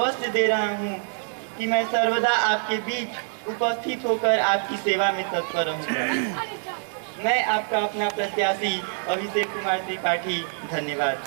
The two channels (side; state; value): left; silent; digital silence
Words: दे रहा हूँ कि मैं सर्वदा आपके बीच उपस्थित होकर आपकी सेवा में तत्पर रहूँगा। मैं आपका अपना प्रत्याशी अभिषेक कुमार त्रिपाठी।